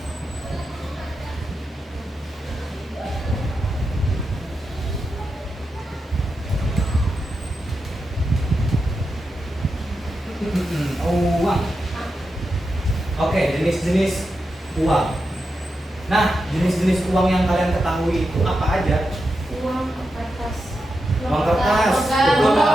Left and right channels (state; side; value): normal; both; correlation 0.88